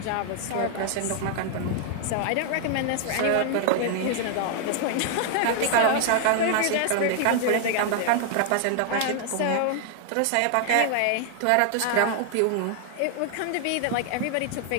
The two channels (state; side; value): different; both; correlation 0.00